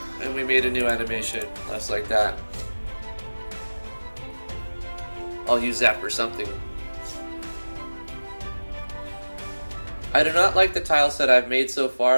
And we made a new animation, just like that. I'll use that for something. I do not like the tile set I've made so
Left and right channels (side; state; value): both; inverted; correlation -1.00